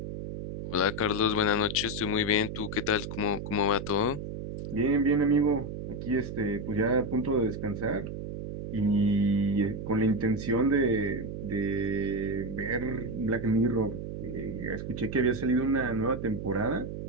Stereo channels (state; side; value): noise; right; hum, 7 dB below the sound